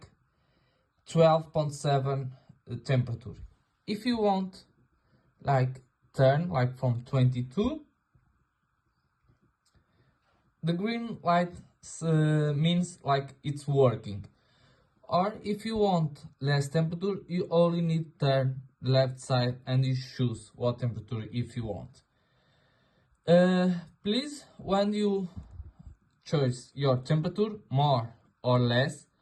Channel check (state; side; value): identical; both; correlation 1.00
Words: 12.7 temperature. If you want like turn like from 22, the green light means like it's working. Or if you want less temperature, you only need turn left side and you choose what temperature if you want. Please, when you choose your temperature more or less,